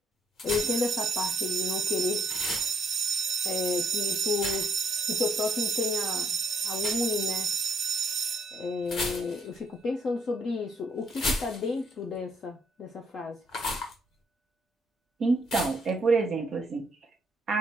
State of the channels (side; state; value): both; normal; correlation 0.70